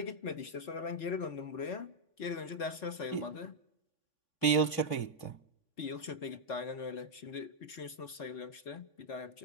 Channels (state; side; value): late; right; 3.6 ms